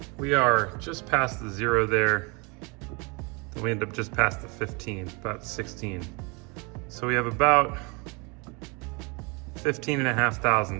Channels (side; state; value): left; quieter; 29.9 dB